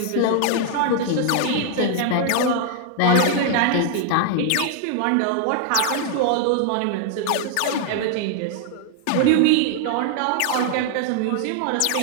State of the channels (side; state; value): both; different; correlation 0.00